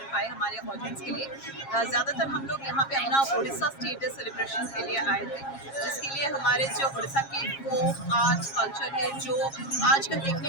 पाए हमारे ऑडियंस के लिए। ज़्यादातर हम लोग यहाँ पे अपना उड़ीसा स्टेट डे सेलिब्रेशन के लिए आए थे, जिसके लिए हमारे जो उड़ीसा के फोक आर्ट कल्चर है जो आजकल देखने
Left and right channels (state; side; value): late; right; 7.3 ms